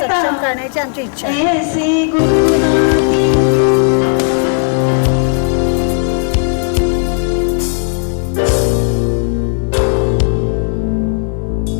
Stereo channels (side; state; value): right; silent; digital silence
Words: करण्याची आमची इच्छा आहे।